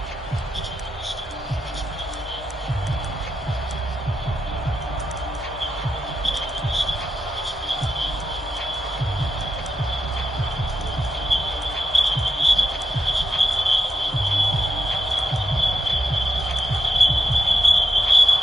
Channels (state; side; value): normal; both; correlation 0.86